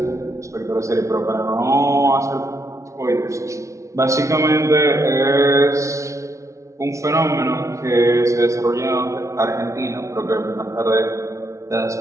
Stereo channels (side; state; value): left; late; 0.14 ms